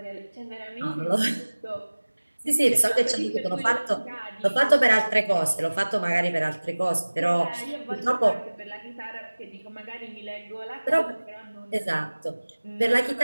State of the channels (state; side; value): inverted; both; correlation -1.00